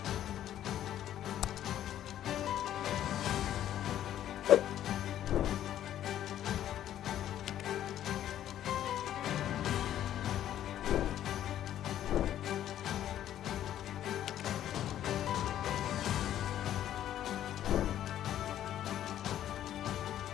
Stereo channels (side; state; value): right; quieter; 11.5 dB